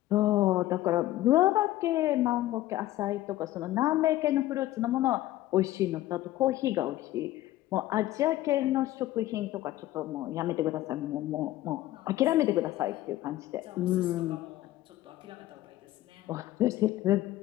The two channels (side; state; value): right; quieter; 15.3 dB